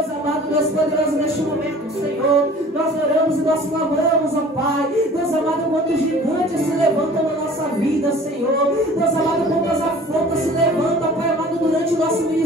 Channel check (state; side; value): normal; both; correlation 0.47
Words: amado, Deus poderoso, neste momento, Senhor, nós oramos e nós clamamos, ó Pai. Deus amado, quantos gigantes se levantam na nossa vida, Senhor. Deus amado, quantas afrontas se levantam, Pai amado, durante o nosso